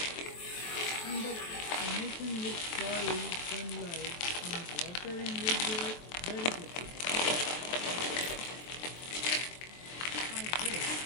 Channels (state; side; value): late; right; 23 ms